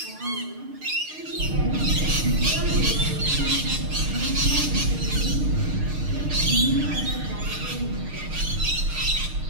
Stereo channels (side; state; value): left; late; 6.5 ms